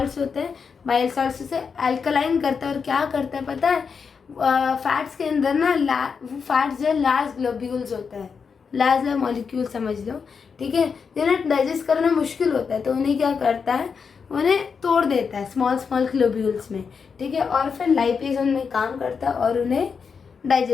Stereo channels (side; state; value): right; quieter; 5.8 dB